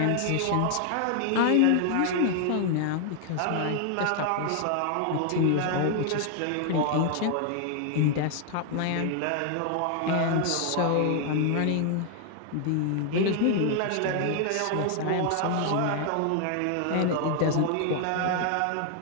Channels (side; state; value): both; different; correlation 0.00